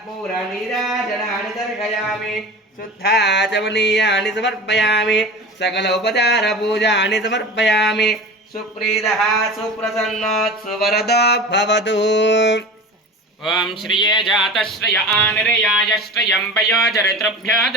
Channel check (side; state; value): both; normal; correlation 0.34